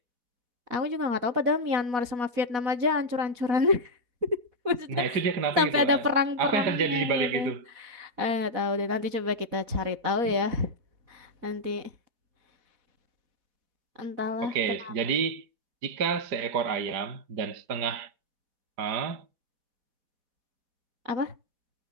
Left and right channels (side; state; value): left; late; 4.1 ms